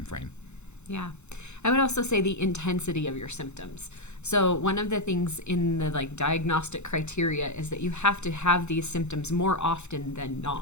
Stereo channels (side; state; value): right; late; 0.82 ms